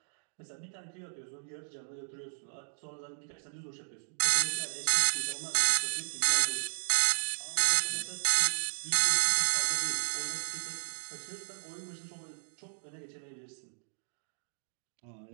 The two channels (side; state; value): left; silent; digital silence